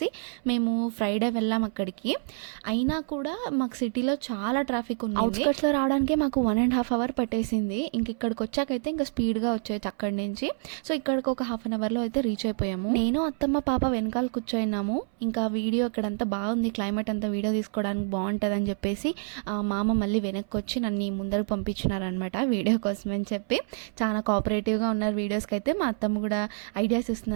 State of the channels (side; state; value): left; silent; 58 dB below the other